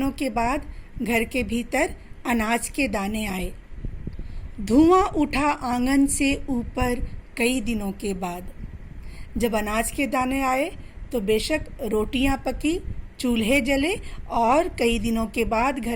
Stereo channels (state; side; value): identical; both; correlation 1.00